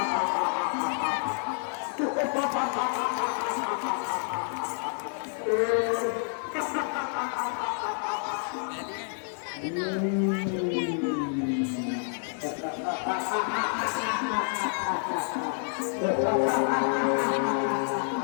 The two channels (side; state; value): right; silent; 59 dB below the other